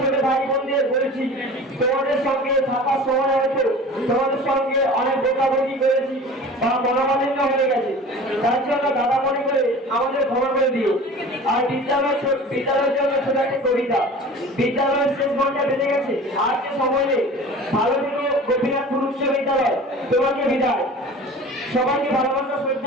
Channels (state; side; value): normal; both; correlation 0.40